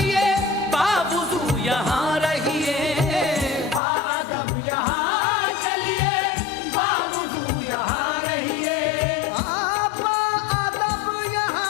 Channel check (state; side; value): drops out; right; at 3.8 s